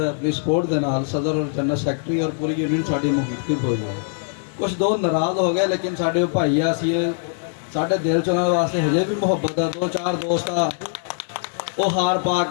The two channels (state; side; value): silent; right; 64 dB below the other